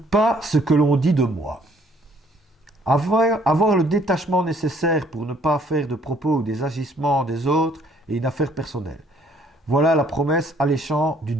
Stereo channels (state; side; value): normal; both; correlation 0.62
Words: pas ce que l'on dit de moi. Avoir le détachement nécessaire pour ne pas faire de propos ou des agissements des autres est une affaire personnelle. Voilà la promesse alléchante du